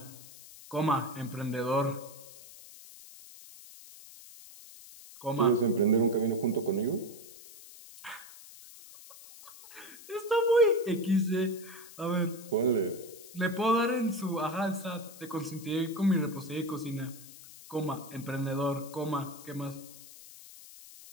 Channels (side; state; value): left; noise; hiss, 18 dB below the sound